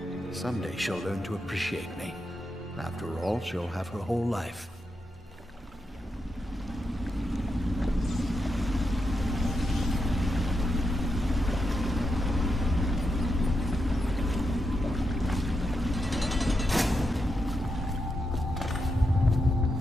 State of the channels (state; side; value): normal; both; correlation 0.85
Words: Someday she'll learn to appreciate me. After all, she'll have her whole life.